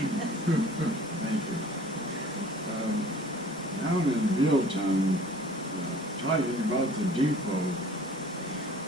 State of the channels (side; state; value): both; normal; correlation 0.49